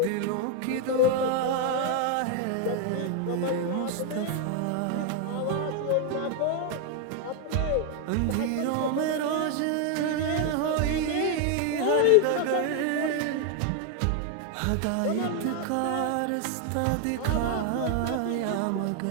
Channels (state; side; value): different; both; correlation 0.01